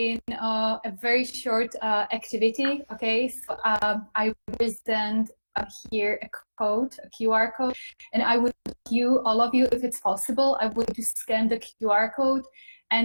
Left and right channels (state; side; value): inverted; both; correlation -1.00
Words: a very short activity. Okay, so I present here a code, a QR code, and I would all of you, if it's possible, I would to scan the QR code